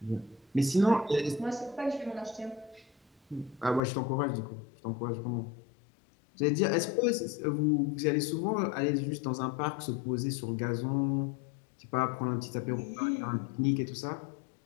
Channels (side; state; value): right; drops out; at 3.8 s